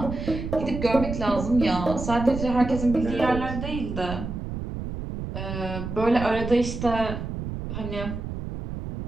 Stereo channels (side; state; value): right; noise; rumble, 6 dB below the sound